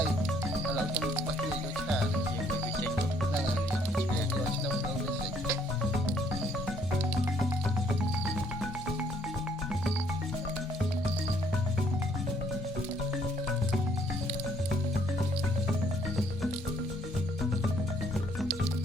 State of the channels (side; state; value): both; normal; correlation 0.66